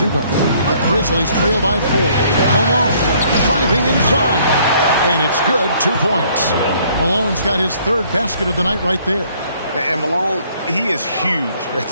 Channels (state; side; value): inverted; both; correlation -0.62